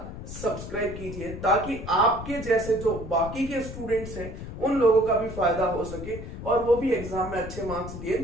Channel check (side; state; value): left; noise; rumble, 9 dB below the sound